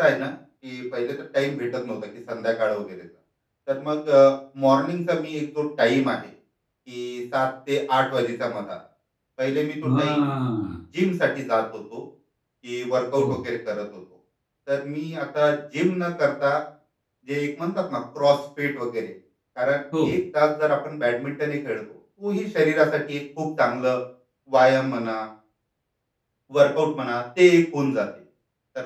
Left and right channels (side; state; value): both; identical; correlation 1.00